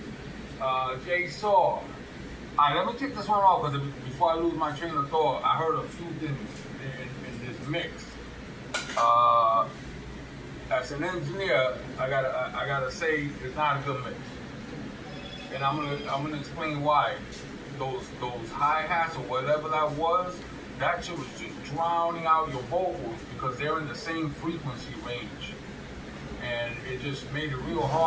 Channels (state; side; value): identical; both; correlation 1.00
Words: Jay Saw. Alright, let me take this one off because before I lose my train of thought, I heard a few things in this mix. As an engineer, I gotta say it's not a good mix, and I'm gonna explain why. Those hi-hats or whatever that shit was just drowning out your vocals because they're in the same frequency range, and it just made it real